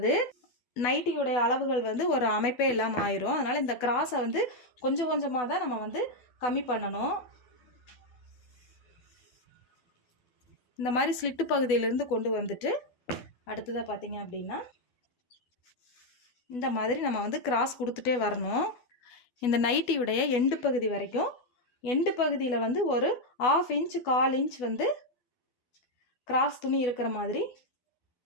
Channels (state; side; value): late; right; 12 ms